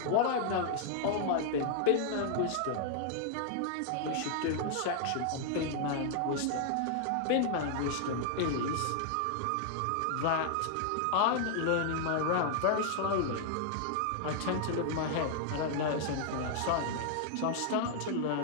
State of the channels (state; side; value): different; both; correlation 0.00